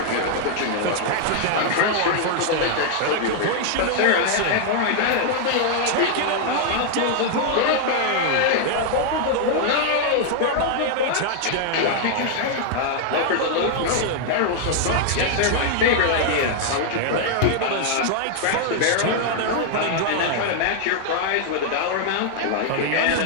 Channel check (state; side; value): different; both; correlation 0.00